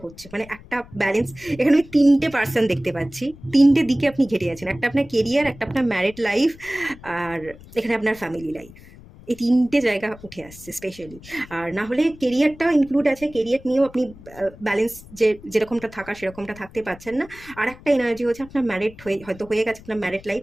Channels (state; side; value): noise; left; rumble, 20 dB below the sound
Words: হচ্ছে, মানে একটা ব্যালেন্স। এখানে আমি 3টে পার্সন দেখতে পাচ্ছি, 3টে দিকে আপনি ঘেটে আছেন, একটা আপনার কেরিয়ার, একটা আপনার ম্যারিড লাইফ, আর এখানে আপনার ফ্যামিলি লাইফ। এই 3টে জায়গা উঠে আসছে স্পেশালি। আর না হলে কেরিয়ারটাও ইনক্লুড আছে, কেরিয়ার নিয়েও আপনি ব্যালেন্স যেরকমটা থাকা সেরকমটা থাকতে পারছেন না। আর একটা এনার্জি হচ্ছে আপনার ম্যারিড হয়তো হয়ে গেছে আপনার ম্যারিড লাইফ,